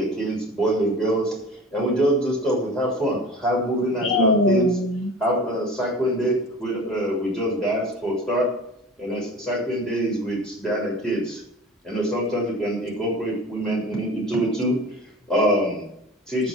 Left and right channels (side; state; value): both; normal; correlation 0.38